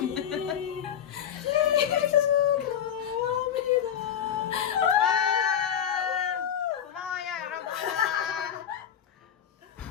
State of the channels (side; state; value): right; quieter; 9.2 dB